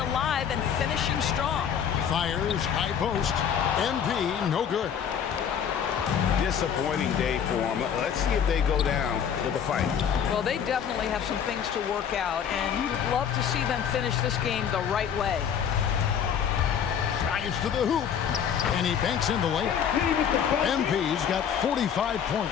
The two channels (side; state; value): right; quieter; 8.1 dB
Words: and finishing strong. Fires, high post. MP, no good. Disappointing day for them. Let's see if they go down with a fight. Well, they definitely have some things to work out, and you'd love to see them finish this game the right way. Drives to the hoop, and he banks in the layup. MP's got 45